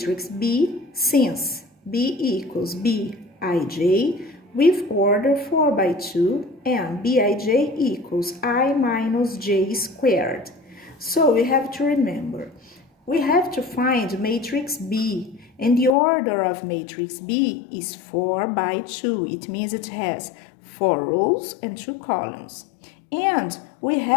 B since B equals Bij with order 4 by 2 and Bij equals I minus j squared. So we have to remember, we have to find matrix B, and the order of matrix B is 4 by 2. It means it has 4 rows and 2 columns. And we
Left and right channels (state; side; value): drops out; right; at 16.0 s